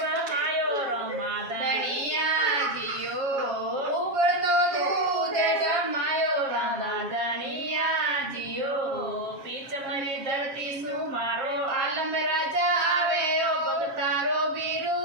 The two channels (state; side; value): late; left; 7.4 ms